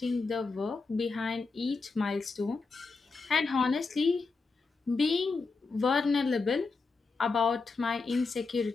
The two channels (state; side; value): quieter; right; 4.2 dB